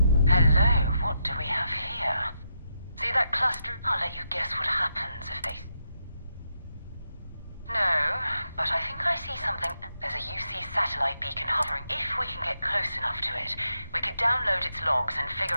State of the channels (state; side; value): inverted; both; correlation -0.83